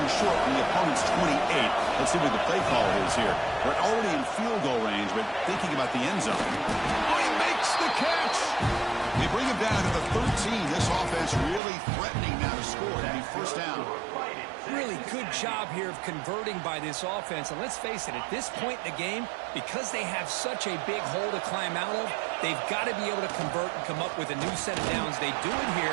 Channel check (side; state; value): left; drops out; at 11.6 s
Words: short from the opponent's 28. Let's see what the play call is here. We're already in field goal range, but thinking about the end zone. Oh, he makes the catch! They bring him down to the 13. This offense really threatening now to score. That'd be first down. Really good job here of converting by this offense. And let's face it, at this point in the game, because they have such a big hole to climb out of, they've got to be able to convert and come up with a new set of downs. They do it here.